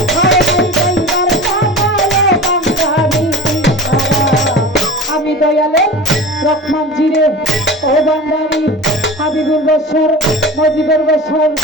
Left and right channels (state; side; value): normal; both; correlation 0.35